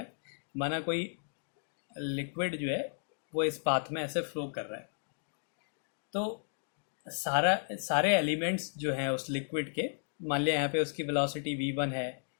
माना कोई लिक्विड जो है वो इस पाथ में ऐसे फ्लो कर रहा है, तो सारे एलिमेंट्स जो हैं उस लिक्विड के, मान लिया यहाँ पे उसकी वेलोसिटी v1 है,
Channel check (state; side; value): silent; right; digital silence